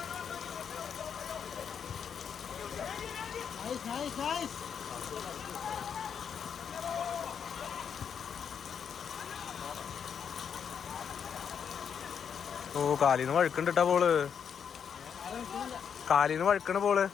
ഓ, കാലിന്ന് വഴുക്കണ്ടിട്ടാ ബോള്. കാലിന്ന് വഴുക്കണ ബോള്.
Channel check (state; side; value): quieter; right; 7.4 dB